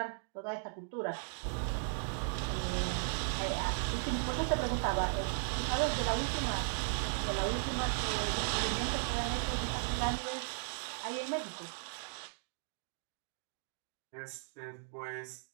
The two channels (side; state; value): left; silent; digital silence